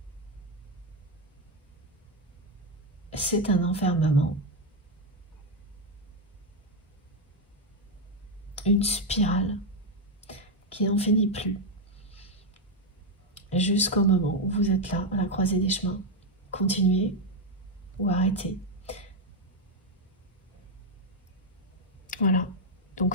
c'est un enfermement, une spirale qui n'en finit plus, jusqu'au moment où vous êtes là, à la croisée des chemins. Continuez ou arrêtez. Voilà,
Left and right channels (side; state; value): both; normal; correlation 0.04